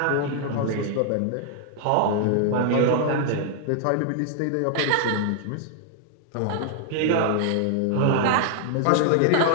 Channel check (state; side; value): different; both; correlation 0.00